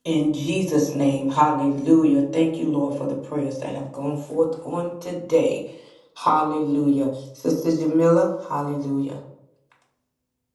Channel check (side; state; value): both; identical; correlation 1.00